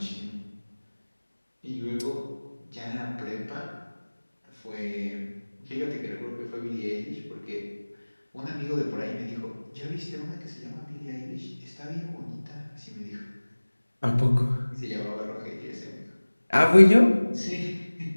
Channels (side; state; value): both; inverted; correlation -1.00